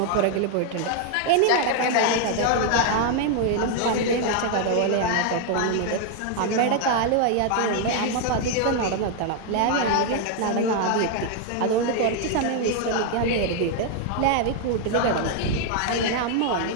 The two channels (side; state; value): both; different; correlation 0.00